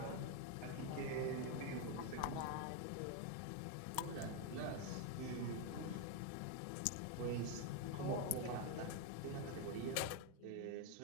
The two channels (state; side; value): different; both; correlation 0.01